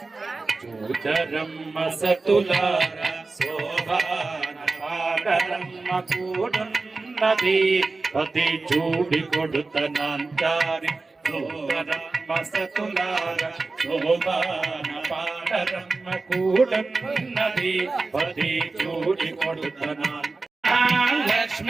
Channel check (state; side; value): quieter; left; 3.7 dB